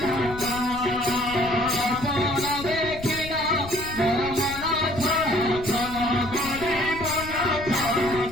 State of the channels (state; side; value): noise; left; rumble, 13 dB below the sound